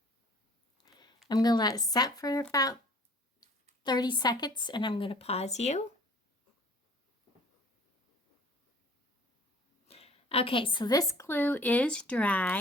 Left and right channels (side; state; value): both; normal; correlation 0.51